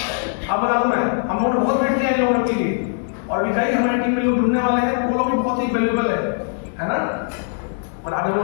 आप बता दूं, मैं हम लोगों ने बहुत वेट किया है लोगों के लिए, और अभी कई हमारी टीम में लोग जुड़ने वाले हैं, वो लोग भी बहुत ही वैल्यूएबल है ना। और आगे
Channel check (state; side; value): silent; right; digital silence